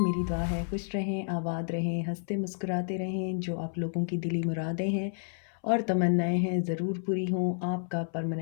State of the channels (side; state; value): right; silent; 58 dB below the other